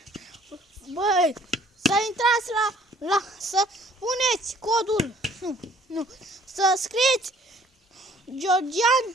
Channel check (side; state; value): both; normal; correlation 0.57